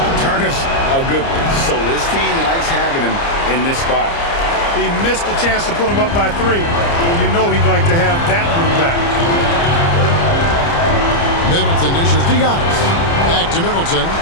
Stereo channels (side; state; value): right; late; 29 ms